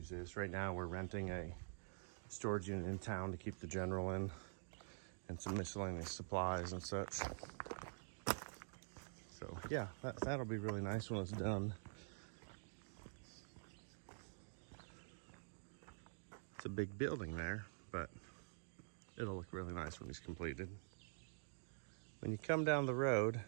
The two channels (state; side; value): silent; left; digital silence